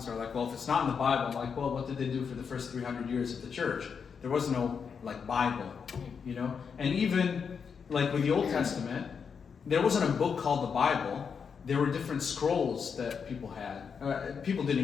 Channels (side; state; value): right; quieter; 6.3 dB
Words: are like, well, if it's not in the Bible, I'm like, well, what did they do for the first 300 years of the church? There was no, Bible, And even, with the Old Testament, there wasn't a book called the Bible. There were different scrolls that people had. People didn't